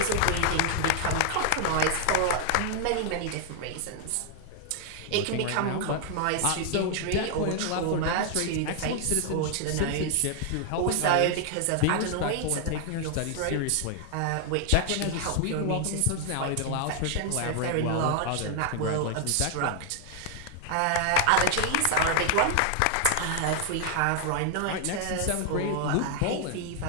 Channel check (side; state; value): both; different; correlation 0.00